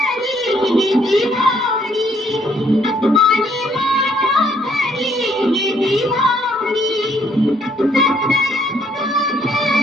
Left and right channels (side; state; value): both; normal; correlation 0.66